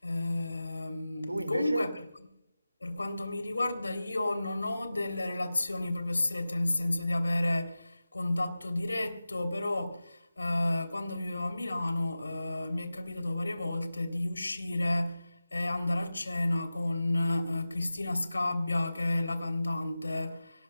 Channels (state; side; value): inverted; both; correlation -0.95